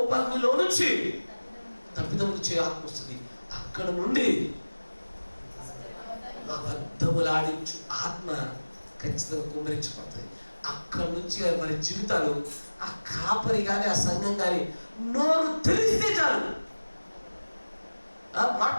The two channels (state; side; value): inverted; both; correlation -1.00